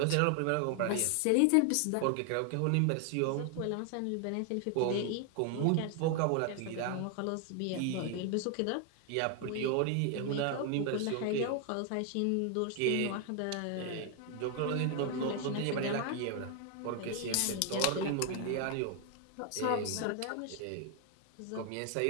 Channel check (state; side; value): different; both; correlation 0.00